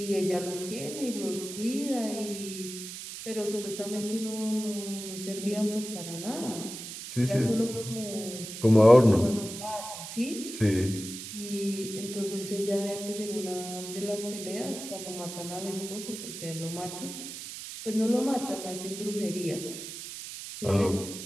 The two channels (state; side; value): noise; right; hiss, 9 dB below the sound